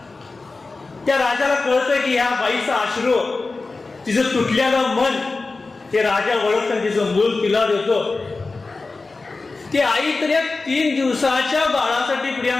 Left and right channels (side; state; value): right; quieter; 3.7 dB